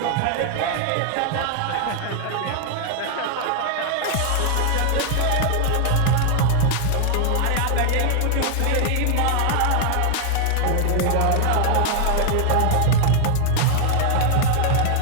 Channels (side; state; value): both; different; correlation 0.00